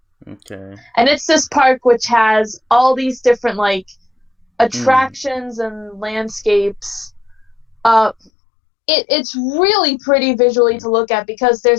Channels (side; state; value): right; drops out; at 8.3 s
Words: Okay. And it's this park which has all these different like attractions and landscapes. It's really pretty visually to look at because